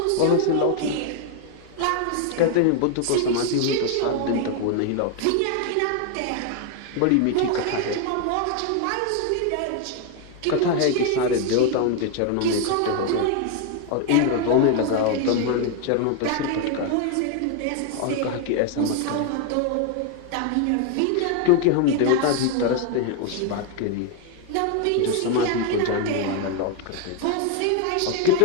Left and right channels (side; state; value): both; different; correlation 0.01